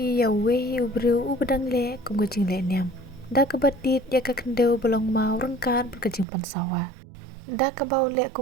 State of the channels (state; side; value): drops out; left; at 6.2 s